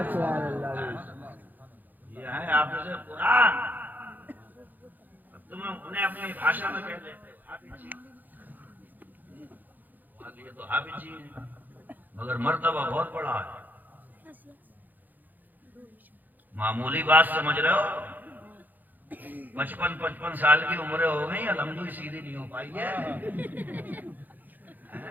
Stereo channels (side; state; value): left; late; 0.085 ms